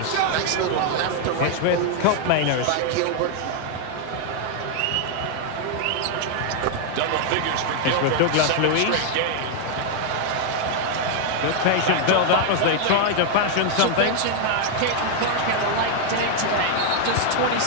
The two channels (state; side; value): different; both; correlation 0.00